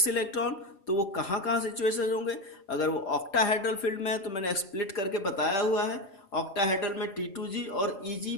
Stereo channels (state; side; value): late; right; 4.9 ms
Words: इलेक्ट्रॉन, तो वो कहाँ कहाँ सिचुएशन होंगे। अगर वो ऑक्टाहेड्रल फील्ड में है तो मैंने स्प्लिट करके बताया हुआ है, ऑक्टाहेड्रल में T2g और EG